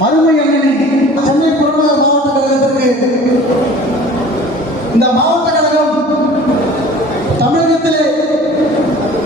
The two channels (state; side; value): normal; both; correlation 0.45